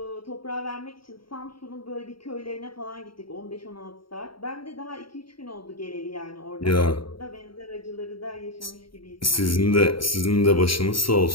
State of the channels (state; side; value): late; right; 0.74 ms